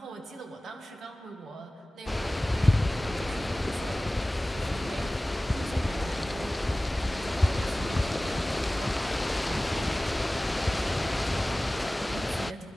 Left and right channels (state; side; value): normal; both; correlation 0.98